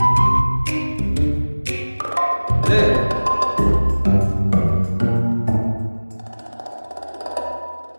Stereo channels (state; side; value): inverted; both; correlation -1.00